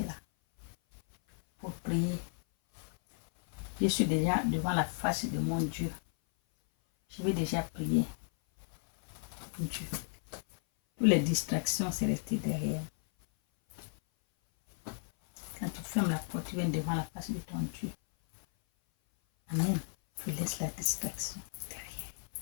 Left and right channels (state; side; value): silent; right; 55 dB below the other